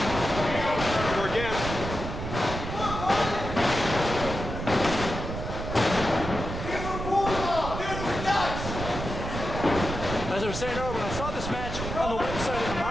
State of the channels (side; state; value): right; noise; rumble, 6 dB below the sound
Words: again. As I was saying earlier, when I saw this match on the website and the